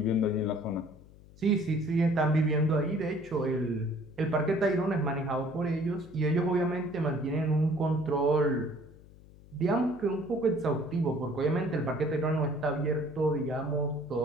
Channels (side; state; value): left; noise; hum, 22 dB below the sound